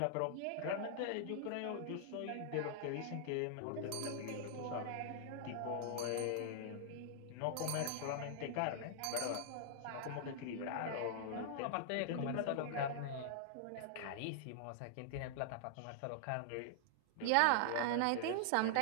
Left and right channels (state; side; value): different; both; correlation -0.01